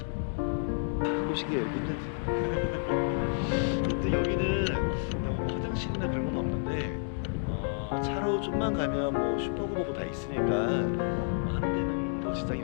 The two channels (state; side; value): silent; right; digital silence